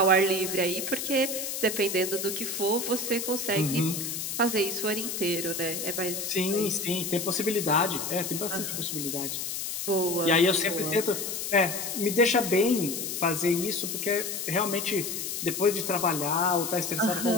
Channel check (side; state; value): left; noise; hiss, 4 dB below the sound